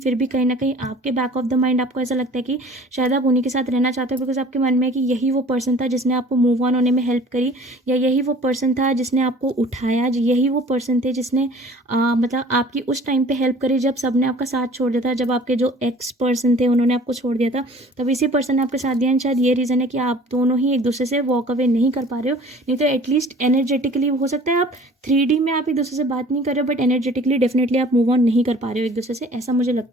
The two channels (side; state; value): both; normal; correlation 0.49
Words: भी कहीं ना कहीं आपके बैक ऑफ द माइंड आपको ऐसा लगता है कि शायद आप उन्हीं के साथ रहना चाहते हो, बिकॉज आपके मन में है कि यही वो पर्सन था जिसने आपको मूव ऑन होने में हेल्प करी, या यही वो पर्सन था जिसने आपको उठाया, यही वो पर्सन थे जिसने मतलब आपकी उस टाइम पे हेल्प करी जब सबने आपका साथ छोड़ दिया था, जब आपके जो एक्स पर्सन थे उन्होंने आपको छोड़ दिया था, तब इसी पर्सन ने आपके साथ दिया। शायद ये रीज़न है कि आप दोनों ही एक दूसरे से वॉक अवे नहीं कर पा रहे हो, नहीं तो एटलीस्ट एनर्जेटिकली हो सकता है आप 3D में आप एक दूसरे से बात नहीं कर रहे हो, बट एनर्जेटिकली डेफिनेटली आप मूव ऑन नहीं कर पा रहे हो एक दूसरे से, ऐसा मुझे